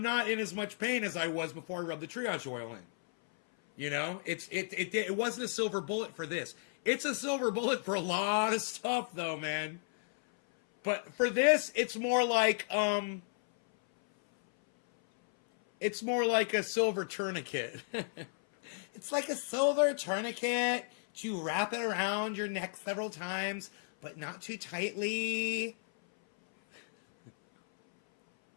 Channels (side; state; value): right; silent; 55 dB below the other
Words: not in as much pain as I was before I rubbed the triage oil in. You know, it wasn't a silver bullet for this. It's a silver bullet for a lot of stuff, though, man. But for this, it's more like a silver tourniquet. It's like a silver tourniquet. You wrap it around your neck several times, but not too tightly.